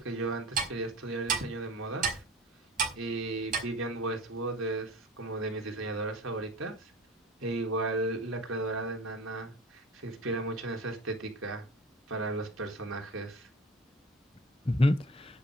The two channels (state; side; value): normal; both; correlation 0.38